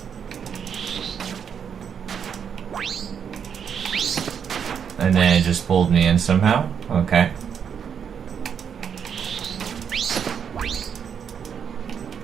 And then it just pulled me in somehow. Okay.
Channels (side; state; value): left; quieter; 7.5 dB